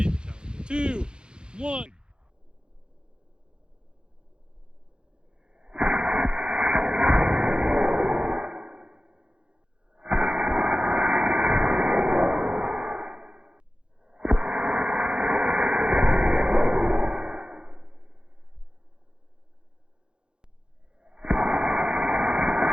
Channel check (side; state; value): left; late; 0.049 ms